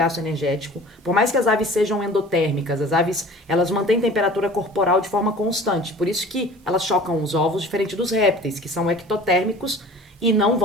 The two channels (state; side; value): normal; both; correlation 0.44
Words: energético. Por mais que as aves sejam endotérmicas, as aves, elas mantêm temperatura corporal de forma constante. Por isso que elas chocam os ovos diferente dos répteis, que são ectotérmicos e não